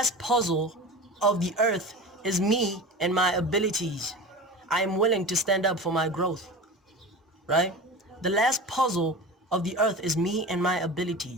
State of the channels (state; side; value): normal; both; correlation 0.32